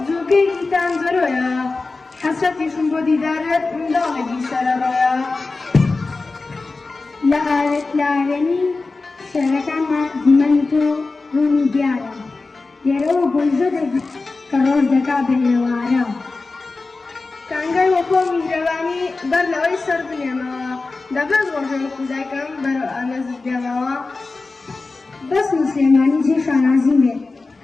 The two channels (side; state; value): right; quieter; 3.7 dB